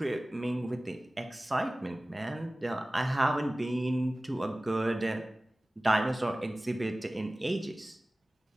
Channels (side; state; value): both; normal; correlation 0.97